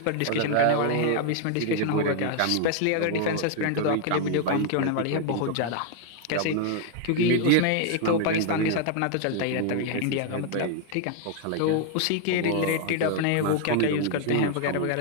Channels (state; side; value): different; both; correlation 0.00